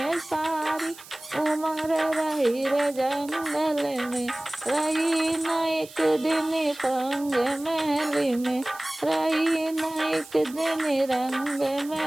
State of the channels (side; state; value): right; noise; hiss, 19 dB below the sound